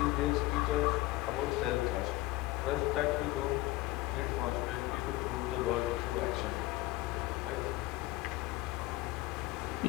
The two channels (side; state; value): right; quieter; 18.7 dB